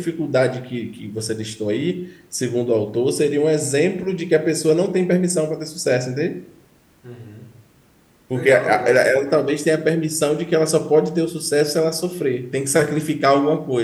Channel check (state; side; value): identical; both; correlation 1.00